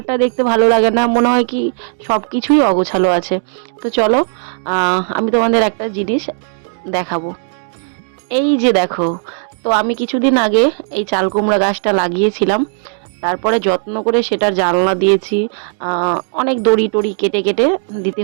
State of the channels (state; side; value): silent; left; 58 dB below the other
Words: দেখতে ভালো লাগে না, মনে হয় কি সব কিছুই অগোছালো আছে। তো চলো, আমি তোমাদের একটা জিনিস দেখাবো। এই যে দেখো, তো আমি কিছুদিন আগে এই চাল কুমড়া গাছটা লাগিয়েছিলাম, তারপরে যত্ন করে সেটার জানলা দিয়েছি। অনেক দড়ি টড়ি কেটে কেটে দিতে